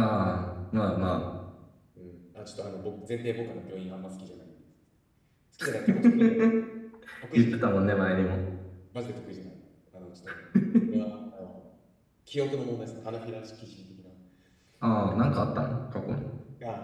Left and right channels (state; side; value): identical; both; correlation 1.00